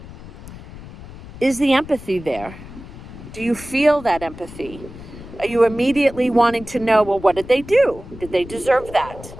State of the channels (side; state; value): left; noise; rumble, 15 dB below the sound